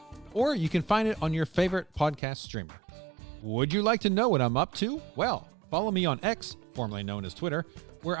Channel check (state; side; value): drops out; left; at 2.2 s